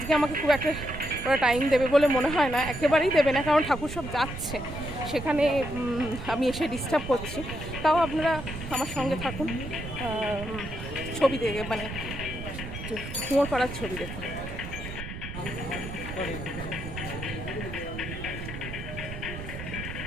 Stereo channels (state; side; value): noise; right; rumble, 9 dB below the sound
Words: আমাকে খুব একটা ওরা টাইম দেবে বলে মনে হয় না, একেবারেই দেবে না, কারণ ঠাকুর সব যাচ্ছে, সেখানে আমি এসে ডিস্টার্ব করছি। তাও আপনারা আমার সঙ্গে থাকুন, ছবি দেখে, মানে কুমোরপাড়ার ছবি দেখুন।